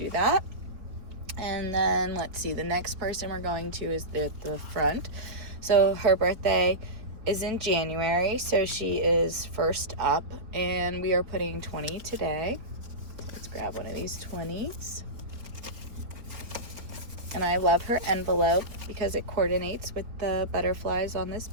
that. And then let's see, the next person we're going to is at the front. So her birthday is in January, so she is first up, and we are putting 20 today. So let's grab one of these 20s. And I love her envelope because it coordinates with the butterflies on this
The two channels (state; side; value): late; left; 4.5 ms